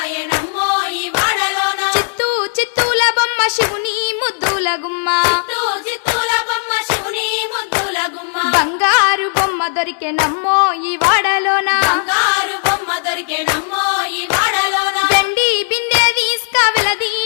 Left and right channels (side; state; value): right; silent; digital silence